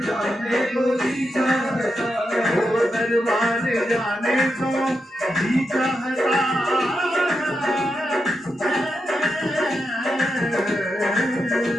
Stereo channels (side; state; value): both; normal; correlation 0.86